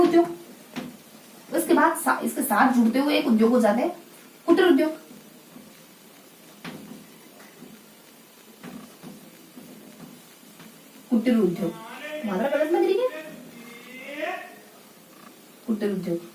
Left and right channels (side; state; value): both; identical; correlation 1.00